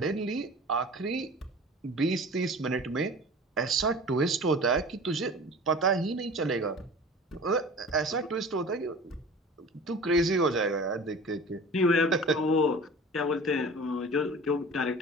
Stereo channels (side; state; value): both; normal; correlation 0.40